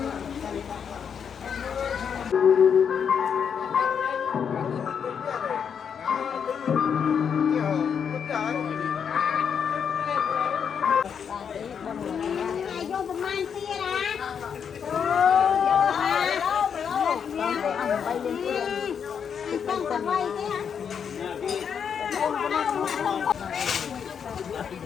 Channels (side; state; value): right; quieter; 7.3 dB